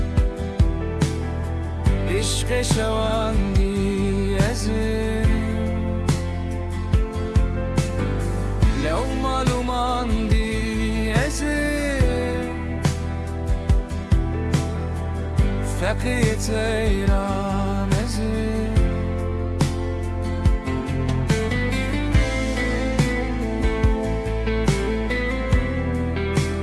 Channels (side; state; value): both; identical; correlation 1.00